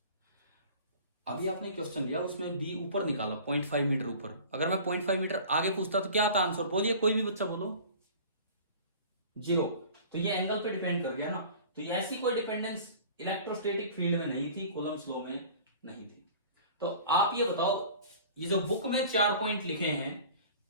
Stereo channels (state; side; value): inverted; both; correlation -0.43